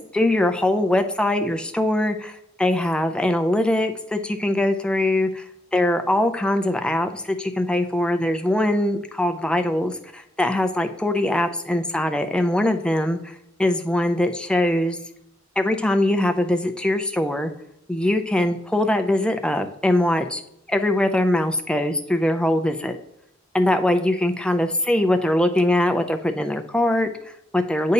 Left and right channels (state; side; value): normal; both; correlation 0.82